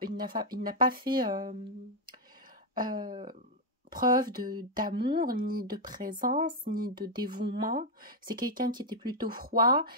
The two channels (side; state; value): both; normal; correlation -0.01